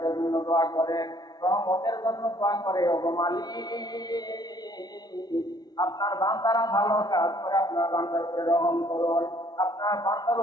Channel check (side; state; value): right; late; 0.19 ms